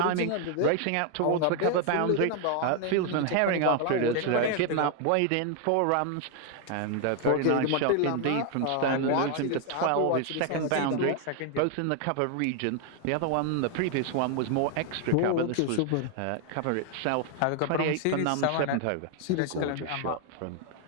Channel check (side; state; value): both; different; correlation 0.00